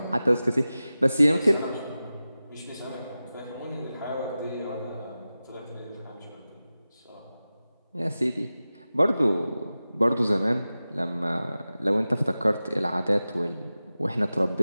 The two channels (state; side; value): inverted; both; correlation -0.95